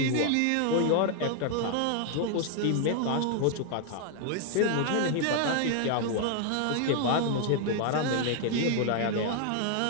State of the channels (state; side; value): different; both; correlation 0.00